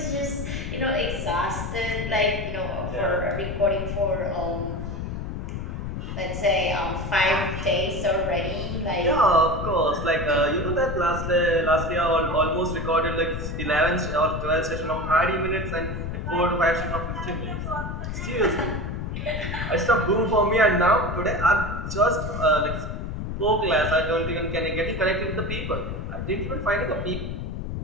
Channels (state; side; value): noise; left; rumble, 5 dB below the sound